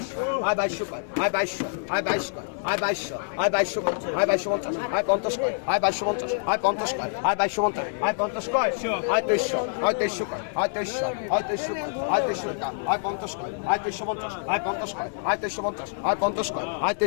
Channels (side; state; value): right; silent; 57 dB below the other